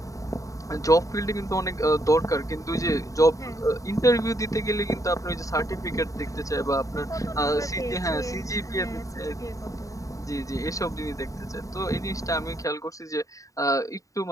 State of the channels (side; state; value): right; late; 0.16 ms